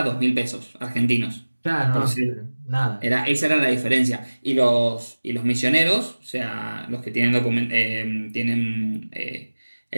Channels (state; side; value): inverted; both; correlation -1.00